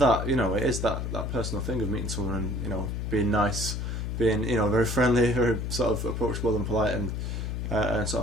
you know, it is that personal thing of meeting someone and, you know, being nice, being, you know, very friendly, very sort of approachable and polite, and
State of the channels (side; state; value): left; noise; hum, 3 dB below the sound